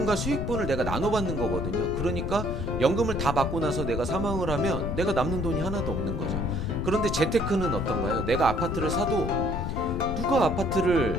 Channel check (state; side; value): noise; left; rumble, 3 dB below the sound